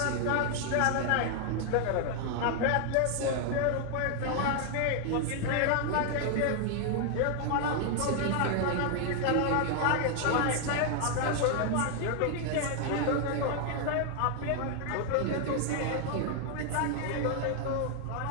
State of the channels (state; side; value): different; both; correlation 0.00